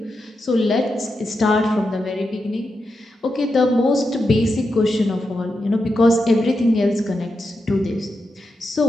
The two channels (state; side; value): normal; both; correlation 0.87